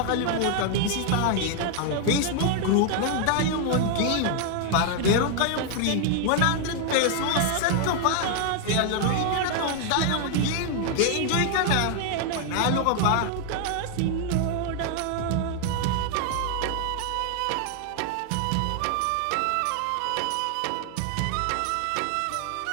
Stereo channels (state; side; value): different; both; correlation 0.00